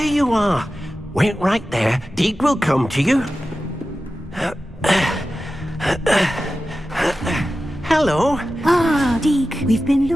you are. Wait right there. Deke will come to you. Hello. Ah, Deke, we've been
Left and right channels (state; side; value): normal; both; correlation 0.94